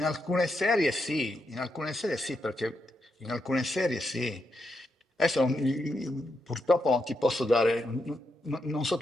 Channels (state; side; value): normal; both; correlation 0.83